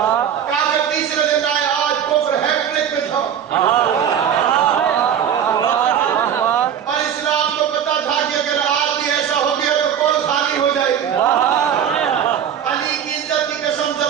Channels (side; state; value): left; quieter; 8.9 dB